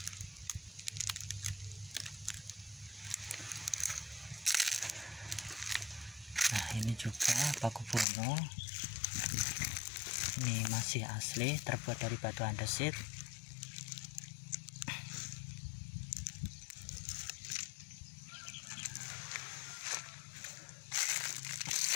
Nah ini juga Paku Buwono, ini masih asli, terbuat dari batu andesit.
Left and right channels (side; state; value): right; drops out; at 8.1 s